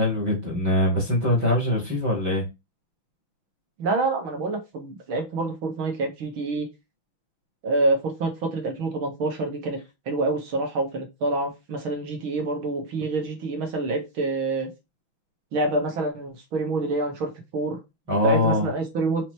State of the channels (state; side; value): late; left; 5.9 ms